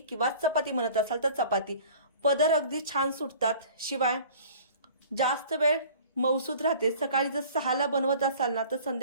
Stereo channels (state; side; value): inverted; both; correlation -0.47